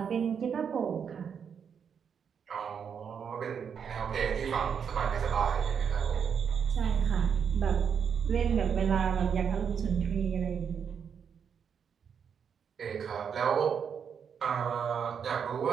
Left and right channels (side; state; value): left; quieter; 7.2 dB